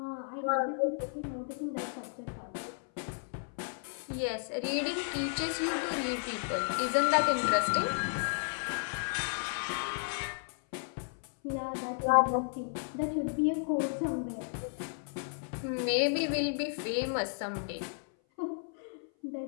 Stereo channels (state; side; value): silent; right; 55 dB below the other